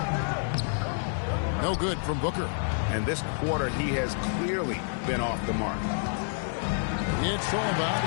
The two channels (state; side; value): silent; right; digital silence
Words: No good from Booker. And this quarter, he has clearly been off the mark. It's all about